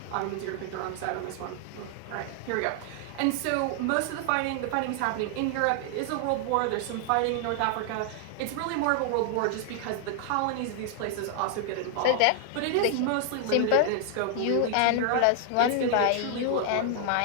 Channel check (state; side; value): different; both; correlation 0.00